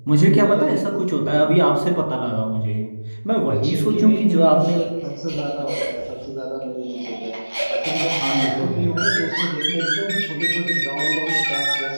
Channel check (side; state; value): both; inverted; correlation -1.00